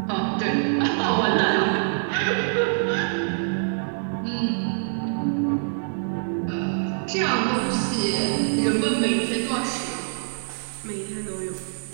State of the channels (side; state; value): left; silent; digital silence